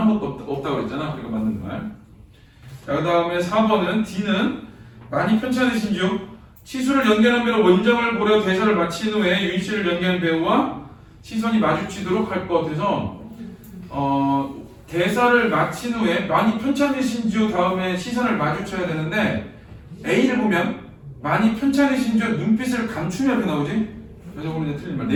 번도 없다고 그랬잖아. 그러니까 맞는 말. 자, 그 다음에 4번은 D는 많이 편찮으신즉 치수를 연기하는 배로 원작을 고려 대사를 마친 후에 윤씨를 연기하는 배우와 시선이 마주치도록 할 것 같아서 대사를 마친 후에 많이 편찮으신즉 다음에 시선을 마주쳐야 되는데 A를 보면 많이 편찮으신즉 눈빛을 감추면 이렇게 나오지. 그래서 오늘 이제 틀린 말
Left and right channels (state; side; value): identical; both; correlation 1.00